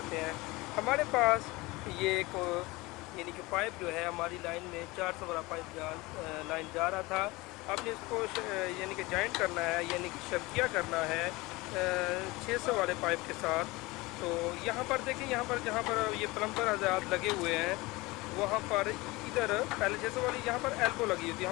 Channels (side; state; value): right; quieter; 22.2 dB